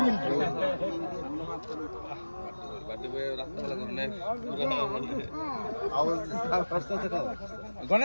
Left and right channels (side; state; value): both; inverted; correlation -1.00